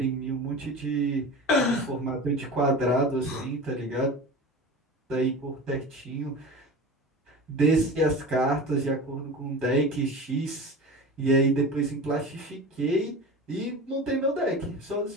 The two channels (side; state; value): both; normal; correlation 0.32